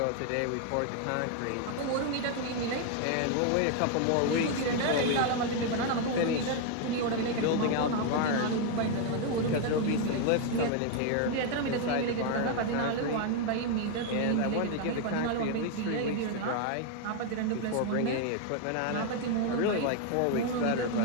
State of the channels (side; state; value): both; different; correlation 0.00